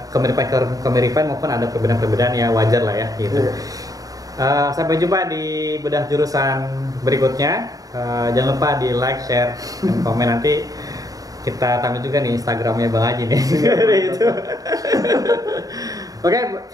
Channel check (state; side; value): late; left; 0.17 ms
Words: kemiripan maupun ada perbedaan-perbedaan ya, wajar lah ya gitu. Sampai jumpa di bedah jurusan berikutnya. Jangan lupa di like, share, dan komen. Nanti kita tampil juga nih Instagramnya Bang Aji nih. Itu. Oke,